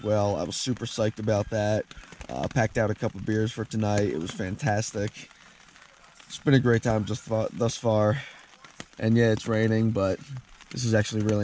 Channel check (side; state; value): both; identical; correlation 1.00